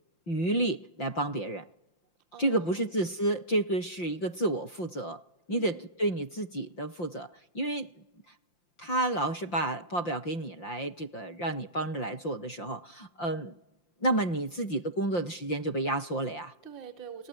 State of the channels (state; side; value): late; right; 5.8 ms